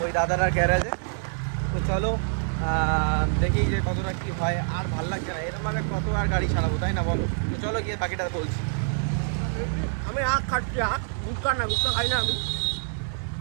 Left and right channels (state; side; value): silent; left; digital silence